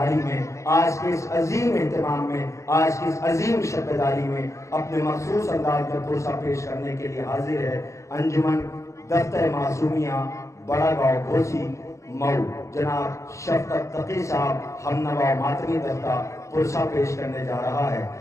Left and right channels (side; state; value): right; late; 0.15 ms